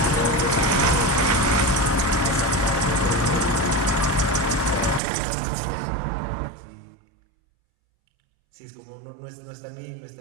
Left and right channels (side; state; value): left; drops out; at 5.0 s